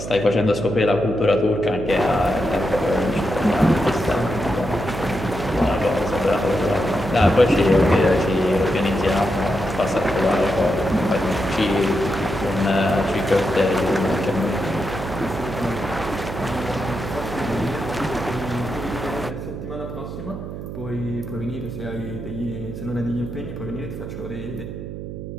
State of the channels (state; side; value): noise; right; hum, 9 dB below the sound